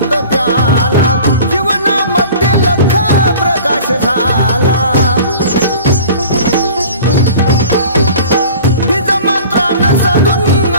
झाला बीज मंत्रानं साधून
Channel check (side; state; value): both; inverted; correlation -0.43